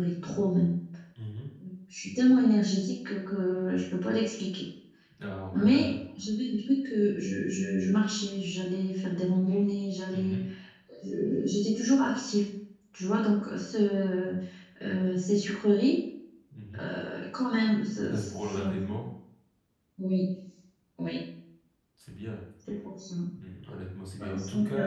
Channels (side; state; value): both; identical; correlation 1.00